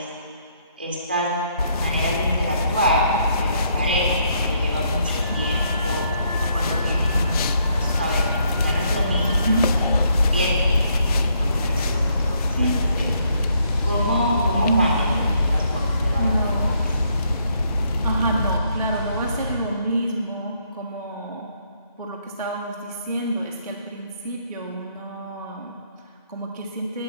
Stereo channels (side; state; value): both; inverted; correlation -0.71